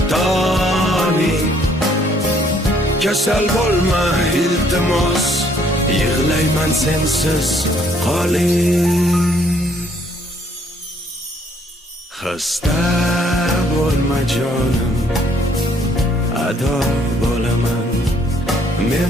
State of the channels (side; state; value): both; normal; correlation 0.65